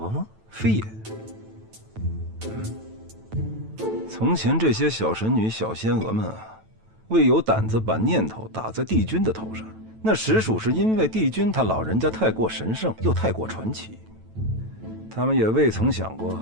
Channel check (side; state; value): left; late; 9.1 ms